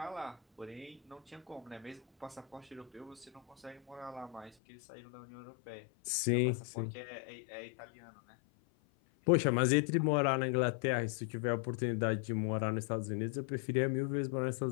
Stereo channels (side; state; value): right; drops out; at 4.5 s